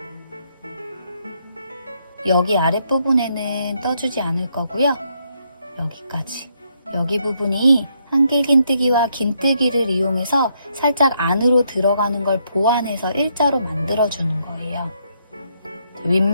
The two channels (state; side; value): inverted; both; correlation -0.75